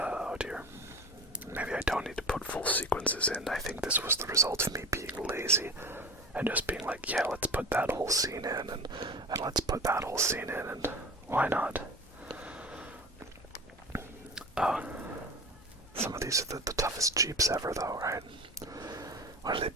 dear. Maybe I don't need to put full sequences in. I think this was the result of me being lazy and just being like, yeah, let's put that whole scene in, and let's put that whole scene in, and why not? Some of these are the toughest Jeeps ever, though, right? Why do they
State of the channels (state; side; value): normal; both; correlation 0.33